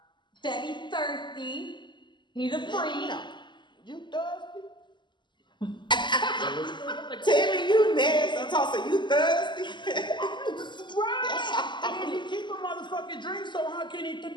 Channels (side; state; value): right; late; 0.22 ms